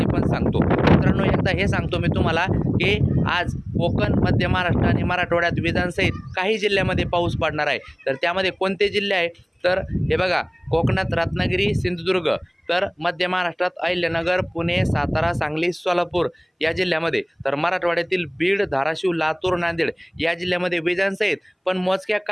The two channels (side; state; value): both; identical; correlation 1.00